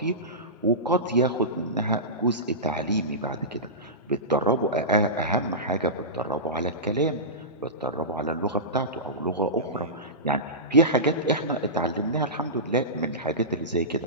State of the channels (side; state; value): both; normal; correlation -0.18